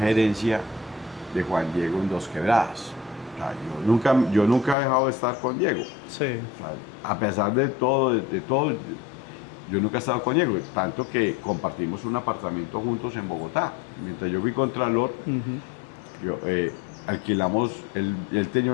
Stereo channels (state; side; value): drops out; right; at 4.8 s